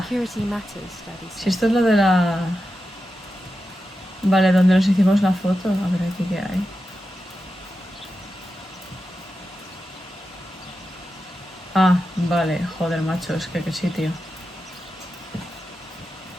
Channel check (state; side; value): normal; both; correlation 0.90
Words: Security matters, Daddy said. Si esto es lo de la... Vale, donde nos hicimos la foto. A ver aquí qué hay. Ah, vale. Joder, macho, es que qué sitio.